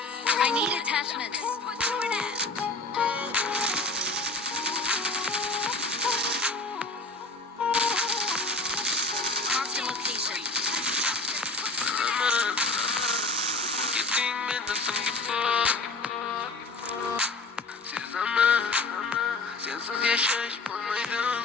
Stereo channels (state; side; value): quieter; right; 3.2 dB